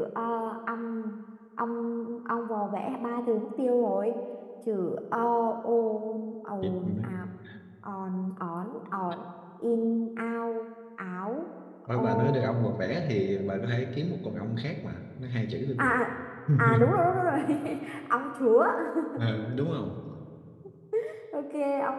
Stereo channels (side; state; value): both; identical; correlation 1.00